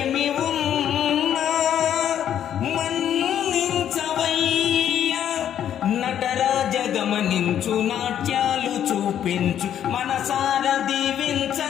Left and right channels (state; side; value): quieter; right; 10.0 dB